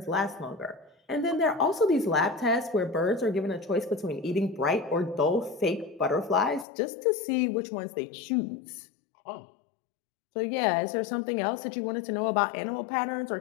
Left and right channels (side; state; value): right; drops out; at 6.7 s